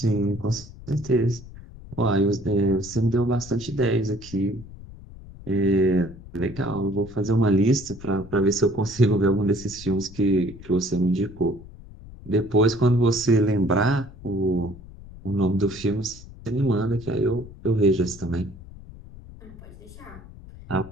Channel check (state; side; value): noise; left; rumble, 17 dB below the sound